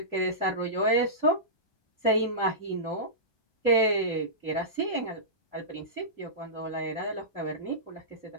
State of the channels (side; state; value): right; late; 1.2 ms